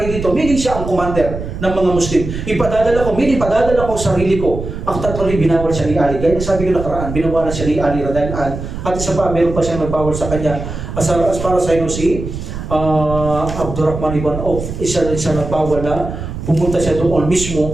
dito, meaning siya ang commander ng mga Muslim. Ipadadala ko, meaning padadala ko sarili ko. Actually, binawal siya ni Ali. Gaya sabi ko nakaraan, binawalan siya ni Ali radhiyallahu anhu. At isa pa, meron pa siyang nagbawal sa kanya. As para sa inyo si Abdurrahman ibn Auf, isa nagbawal na pumunta siya doon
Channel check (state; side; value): noise; right; rumble, 7 dB below the sound